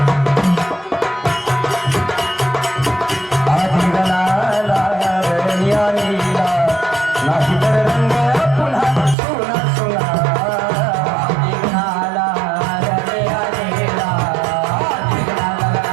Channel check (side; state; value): left; drops out; at 9.2 s